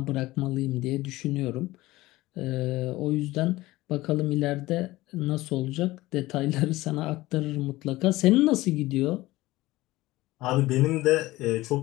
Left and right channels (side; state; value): right; quieter; 18.4 dB